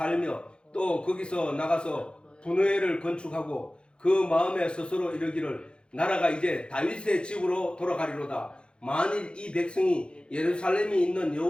또 거기서 나가서 분회를 건축하고 그 마음에 스스로 이르기를 나라가 이제 다윗의 집으로 돌아가리로다. 만일 이 백성이 예루살렘에 있는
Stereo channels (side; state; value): right; late; 0.054 ms